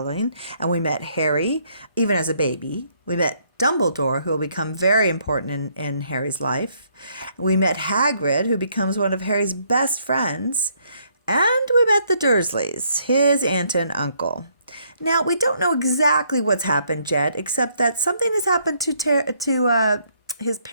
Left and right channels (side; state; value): both; inverted; correlation -0.69